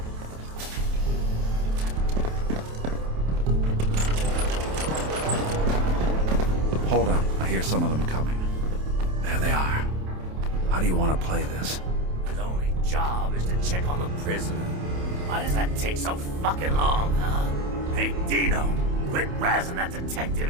Hold on. I hear some of them coming. There they are. How do you want to play this? His only job is to check on the prisoner. Why does that take so fucking long, huh? Hey, Dino, quit razzing that detective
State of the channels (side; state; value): left; late; 28 ms